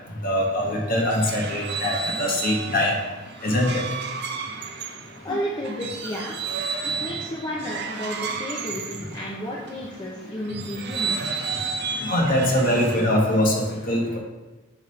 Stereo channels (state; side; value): normal; both; correlation 0.35